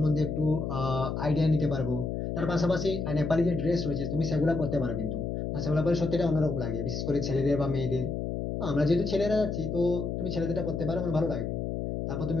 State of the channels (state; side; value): noise; left; hum, 3 dB below the sound